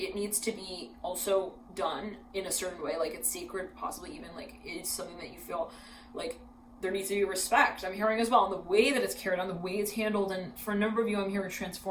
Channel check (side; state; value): both; identical; correlation 1.00